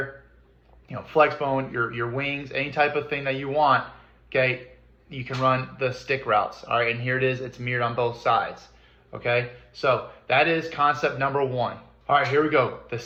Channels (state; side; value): identical; both; correlation 1.00